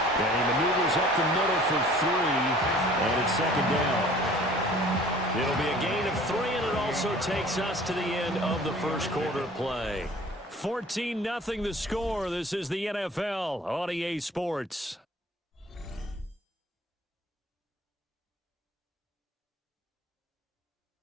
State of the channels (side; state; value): both; normal; correlation 0.49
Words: And he maneuvers up the middle for 3, and it's second down. It'll be a gain of 3, and it also takes us to the end of the first quarter play. 14-0 the score. This is the NFL on EA Sports.